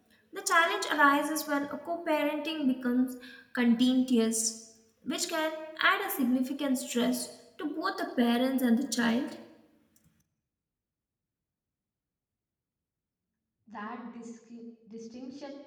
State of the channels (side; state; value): both; identical; correlation 1.00